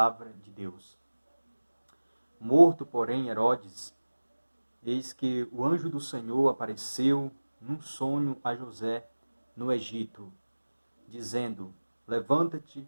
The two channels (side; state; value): both; inverted; correlation -1.00